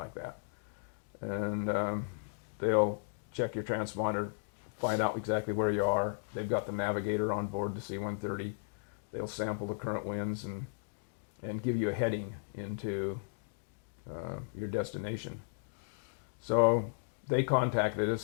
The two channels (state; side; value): silent; right; digital silence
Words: that. And they'll check your transponder, find out exactly where you are. They've got the navigator on board the C-130. They'll sample the current winds and give you a heading into your destination. So they contacted